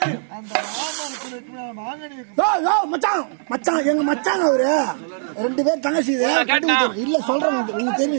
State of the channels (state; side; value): silent; left; digital silence